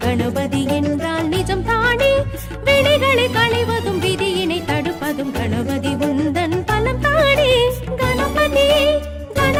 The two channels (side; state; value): both; identical; correlation 1.00